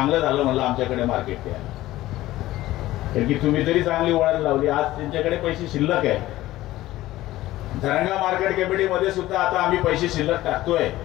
झालं म्हणलं आमच्याकडे मार्केट द्या. कारण की तुम्ही तरी चांगली वळण लावली. आज त्यांच्याकडे पैसे शिल्लक आहे. धरणगाव मार्केट कमिटीमध्ये सुद्धा आता आम्ही पैसे शिल्लक टाकतोय.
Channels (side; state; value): right; quieter; 16.1 dB